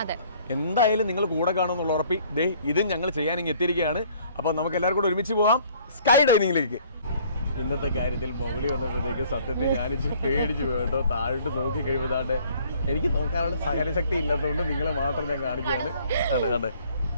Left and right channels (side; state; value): both; inverted; correlation -0.58